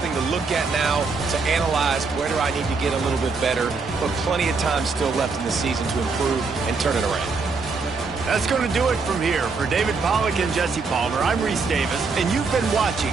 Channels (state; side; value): quieter; left; 4.4 dB